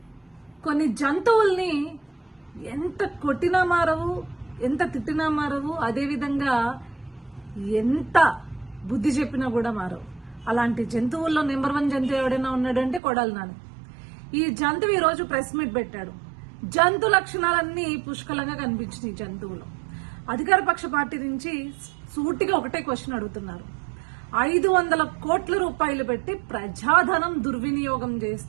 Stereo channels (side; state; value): left; drops out; at 13.0 s